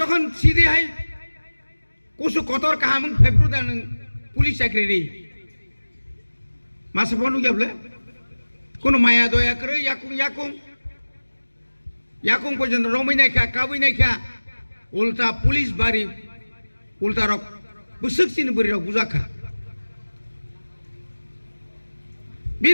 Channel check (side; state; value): both; inverted; correlation -1.00